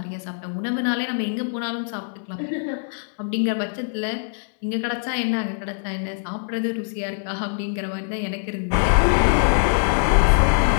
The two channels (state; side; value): silent; right; digital silence